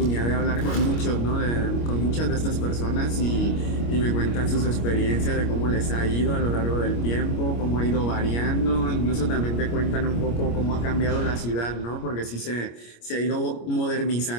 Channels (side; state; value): right; late; 25 ms